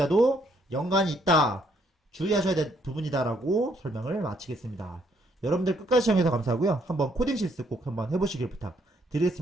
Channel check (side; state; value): both; normal; correlation 0.70